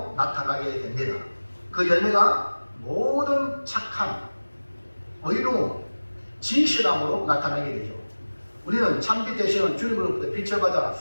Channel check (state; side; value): inverted; both; correlation -1.00